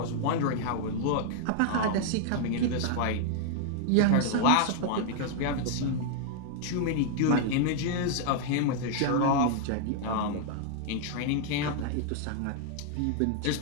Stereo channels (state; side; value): different; both; correlation 0.00